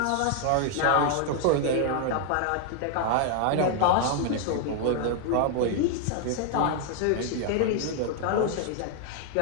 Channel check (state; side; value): different; both; correlation 0.00